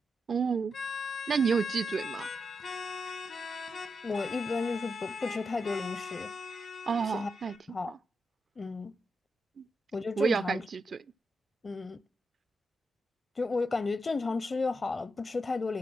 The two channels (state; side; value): normal; both; correlation 0.85